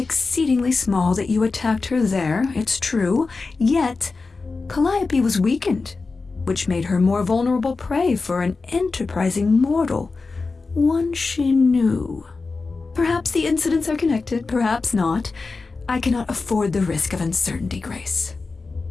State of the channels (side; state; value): right; quieter; 4.0 dB